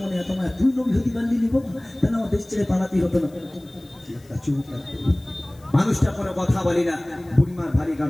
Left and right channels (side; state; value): left; noise; hiss, 29 dB below the sound